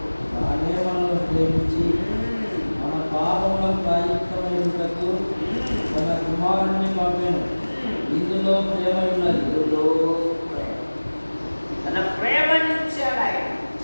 తానే మనల్ని ప్రేమించి మన పాపములకు ప్రాయశ్చిత్తమైనటకు తన కుమారుని పంపెను. ఇందులో ప్రేమ ఉన్నది. ఇందులో ప్రేమ. తన ప్రేమనిచ్చాడు ఆయన.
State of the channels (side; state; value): both; inverted; correlation -1.00